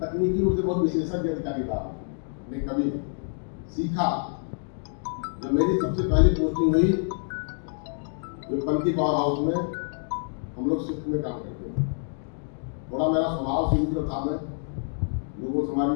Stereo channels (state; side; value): silent; right; digital silence